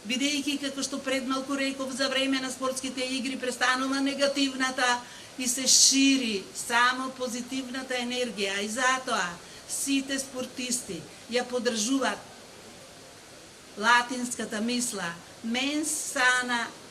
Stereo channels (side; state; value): both; identical; correlation 1.00